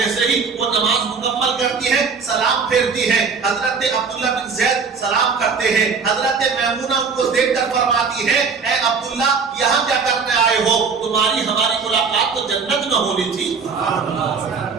ہی وہ نماز مکمل کرتی ہیں سلام پھیرتی ہیں. حضرت عبداللہ بن زید سلام کرتے ہیں. حضرت میمونہ ان کو دیکھ کر فرماتی ہے اے عبداللہ یہاں کیا کرنے آئے ہو؟ تمہاری ہماری ملاقات تو جنت میں ہونی تھی.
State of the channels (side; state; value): left; quieter; 5.3 dB